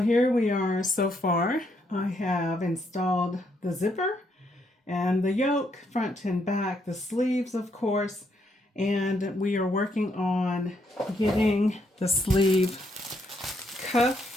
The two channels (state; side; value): normal; both; correlation 0.75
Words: here we are so far. I have installed the zipper and the yoke, front and back, the sleeves, of course. And we are working on getting the sleeve